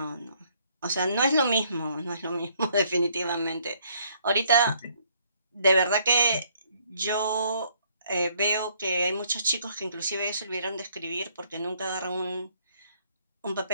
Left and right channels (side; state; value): both; inverted; correlation -0.66